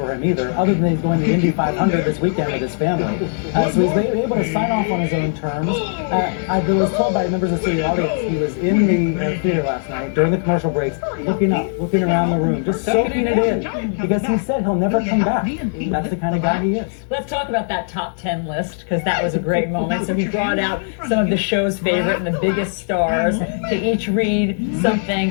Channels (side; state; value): right; silent; digital silence